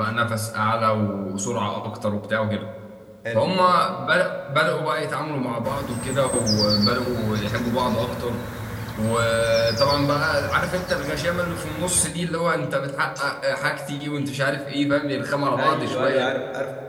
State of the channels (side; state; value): both; identical; correlation 1.00